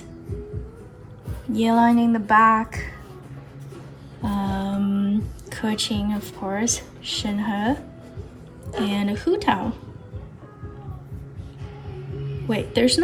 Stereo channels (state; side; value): identical; both; correlation 1.00